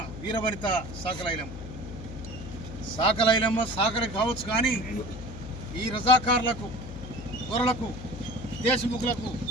వీరవనిత సాకలైలమ్మ సాకలి కావచ్చు, కానీ ఈ రజాకారులకు దొరలకు దేశముఖులకు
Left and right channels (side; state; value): left; noise; hum, 10 dB below the sound